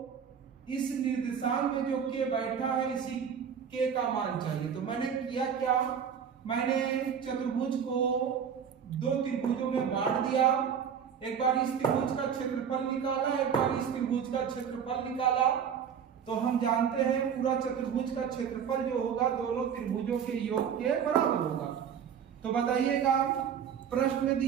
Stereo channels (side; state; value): left; quieter; 7.7 dB